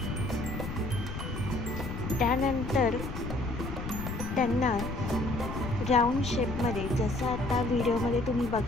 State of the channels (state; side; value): noise; left; rumble, 7 dB below the sound